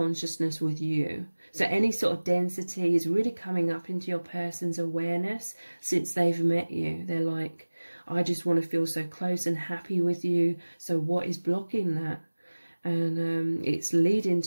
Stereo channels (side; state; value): both; inverted; correlation -1.00